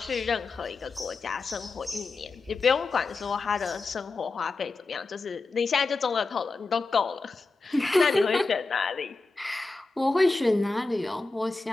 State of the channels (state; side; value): quieter; right; 3.7 dB